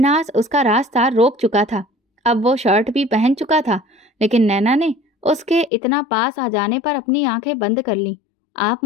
उसका रास्ता रोक चुका था। अब वो शर्ट भी पहन चुका था, लेकिन नैना ने उसके इतना पास आ जाने पर अपनी आंखें बंद कर लीं। आप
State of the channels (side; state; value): right; drops out; at 5.7 s